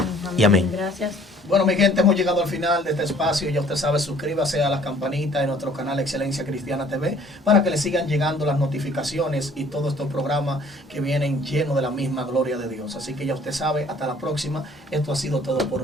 y amén. Gracias. Bueno, mi gente, hemos llegado al final de este espacio. Ya usted sabe, suscríbase a la campanita de nuestro canal Excelencia Cristiana TV para que le sigan llegando las notificaciones y todos estos programas que vienen llenos de la misma gloria de Dios. Así que ya usted sabe, hasta la próxima. Esto ha sido todo por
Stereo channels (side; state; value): both; normal; correlation 0.56